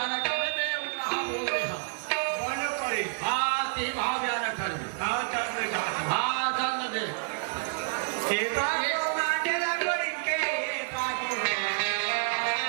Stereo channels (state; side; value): silent; left; 56 dB below the other